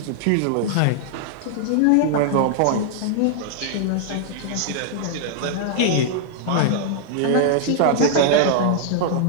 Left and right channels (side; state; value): both; different; correlation -0.01